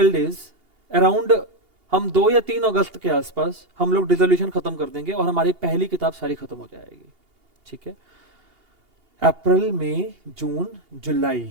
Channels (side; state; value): left; late; 2.8 ms